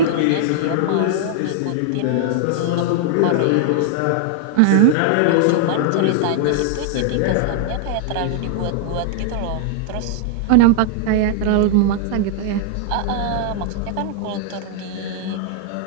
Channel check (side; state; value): both; different; correlation -0.01